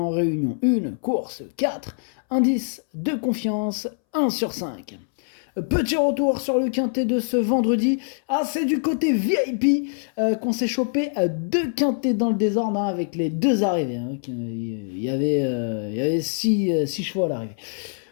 réunion 1, course 4, indice de confiance 1 sur 5. Petit retour sur le quintet de ce vendredi. Ah, c'est du côté VIP qu'on s'est chopé deux quintets dans le désordre avec les deux arrivées. Il y avait six chevaux à l'arrivée.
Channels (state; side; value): silent; right; 63 dB below the other